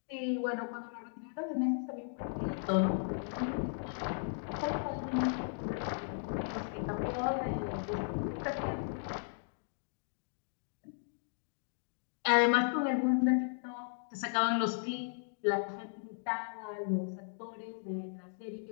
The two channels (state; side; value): silent; right; digital silence